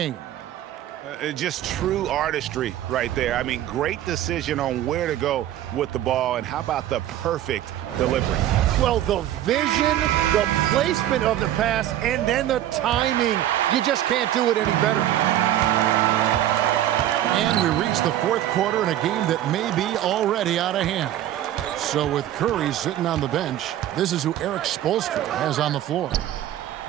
Just true artistry right there. I mean, great decision on where to go with the ball, and how about the perfect delivery? Well, the vision, the placement of the pass, and then the timing. You just can't do it any better. And we reach the fourth quarter in a game that may be already out of hand. So with Curry sitting on the bench, this is who Eric Spoelstra has on the floor.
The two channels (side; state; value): left; quieter; 12.4 dB